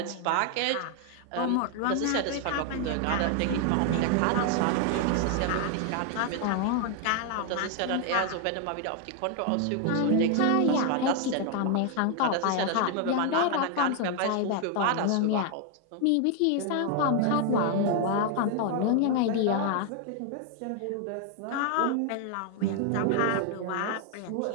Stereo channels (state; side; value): different; both; correlation 0.00